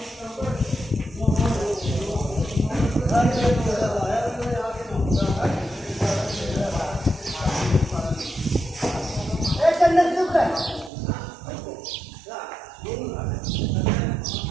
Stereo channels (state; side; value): drops out; left; at 10.9 s